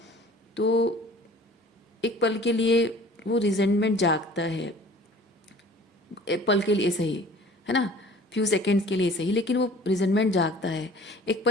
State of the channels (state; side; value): normal; both; correlation 0.48